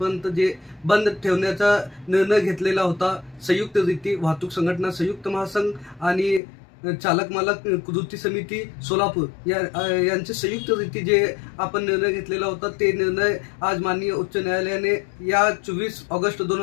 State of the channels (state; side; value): drops out; right; at 6.4 s